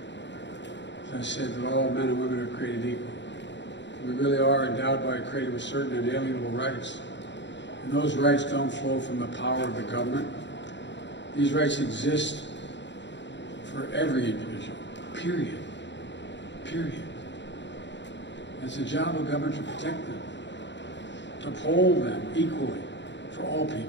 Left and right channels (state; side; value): late; right; 0.52 ms